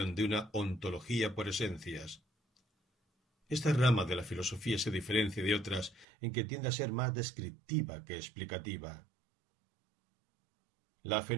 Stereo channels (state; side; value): drops out; left; at 6.1 s